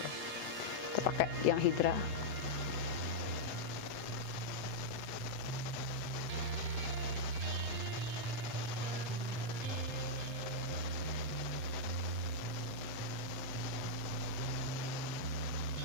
loh. Kita pakai yang Hydra.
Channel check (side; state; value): right; late; 8.0 ms